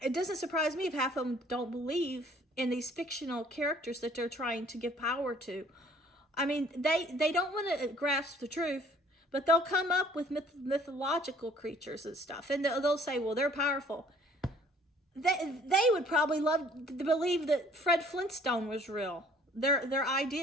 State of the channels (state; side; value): normal; both; correlation 0.56